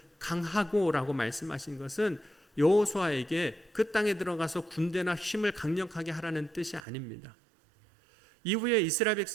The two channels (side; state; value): left; drops out; at 6.8 s